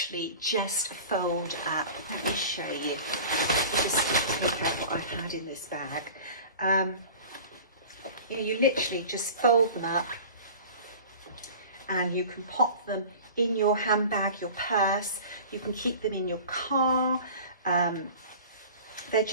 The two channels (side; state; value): both; inverted; correlation -0.39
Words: just fold up. Let me show you. Just look at what I had in this bag. You literally just fold them up, and you can pop them in your handbag, your purse. You can keep them in your car. They're